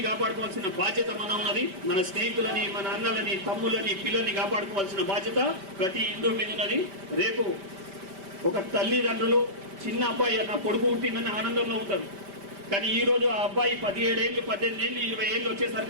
కాపాడుకోవాల్సిన బాధ్యత మన ఉన్నది. మన స్నేహితులని, మన అన్నలని, తమ్ములని, పిల్లల్ని కాపాడుకోవాల్సిన బాధ్యత ప్రతి హిందూ మీద ఉన్నది. రేపు ఒక తల్లిదండ్రులు చిన్న అబ్బాయి నా కొడుకు పుట్టిందని ఆనందంలో ఉంటారు. కానీ ఈ రోజు ఆ అబ్బాయి 17 ఏళ్ళు, 18 ఏళ్ళు, 20 ఏళ్ళు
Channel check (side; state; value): left; late; 5.2 ms